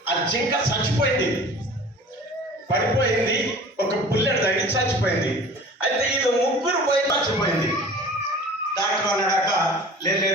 ఆ జింక చచ్చిపోయింది, పడిపోయింది, ఒక బుల్లెట్ తగిలి చచ్చిపోయింది. అయితే ఇది ముగ్గురు పోయి చచ్చిపోయింది. డాక్టర్ అన్నాడట,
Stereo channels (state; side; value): normal; both; correlation 0.43